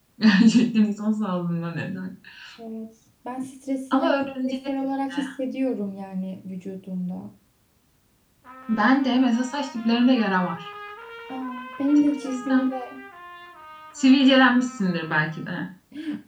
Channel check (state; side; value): identical; both; correlation 1.00